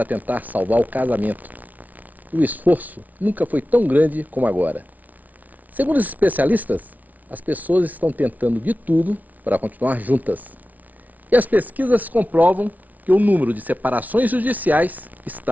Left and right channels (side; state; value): left; late; 0.075 ms